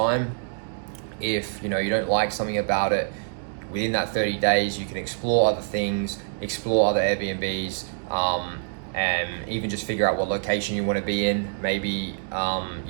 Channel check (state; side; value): silent; left; digital silence